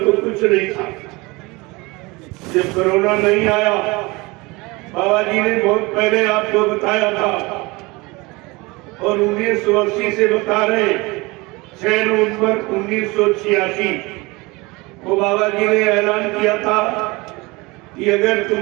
कुछ नहीं था। जब कोरोना नहीं आया, बाबा जी ने बहुत पहले आपको बताया था और 1980 से बता रहे, 6 नवंबर 1986 को बाबा जी ने ऐलान किया था कि अगर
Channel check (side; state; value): left; quieter; 24.1 dB